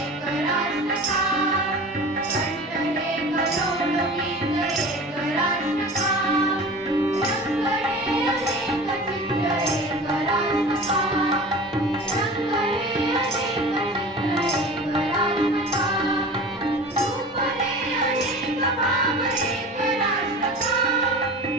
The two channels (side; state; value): both; normal; correlation 0.37